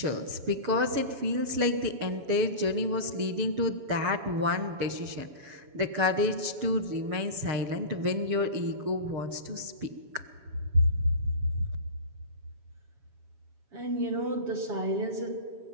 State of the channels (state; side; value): late; left; 7.2 ms